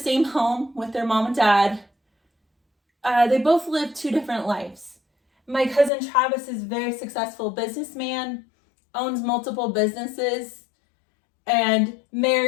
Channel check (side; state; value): right; drops out; at 5.9 s